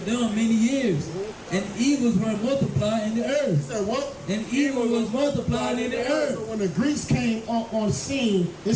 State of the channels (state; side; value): identical; both; correlation 1.00